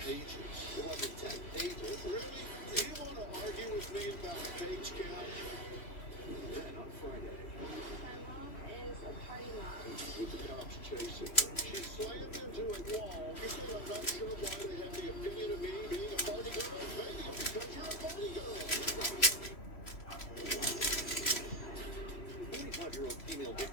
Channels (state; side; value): late; right; 3.1 ms